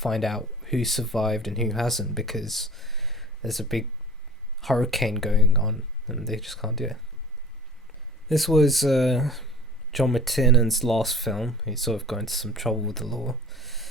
out who survived and who hasn't, because there's a big hurricane going on and they just can't do it. This was John McTiernan's last film. He sort of got into some trouble with the law.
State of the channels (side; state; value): both; normal; correlation 0.43